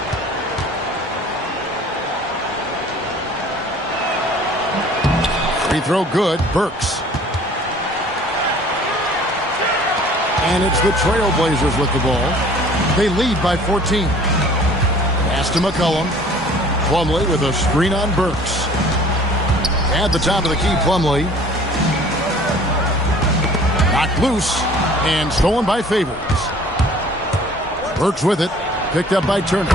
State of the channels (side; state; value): both; normal; correlation 0.50